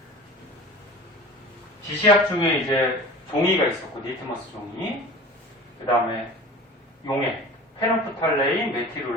지시약 중에 이제 종이가 있었고, 니트머스 종이. 그 다음에 용액, 페놉프탈레인,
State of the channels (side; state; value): both; normal; correlation 0.39